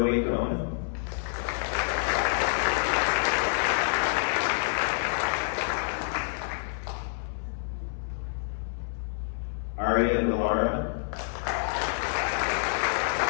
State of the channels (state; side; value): silent; right; 59 dB below the other